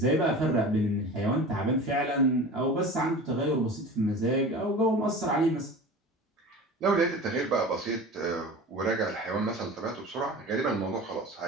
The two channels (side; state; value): both; normal; correlation 0.35